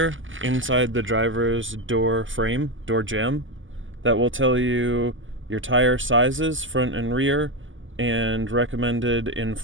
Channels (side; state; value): left; late; 0.57 ms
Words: inside the driver's door frame, door jamb, that will tell you your tire sizes, front and rear, and recommended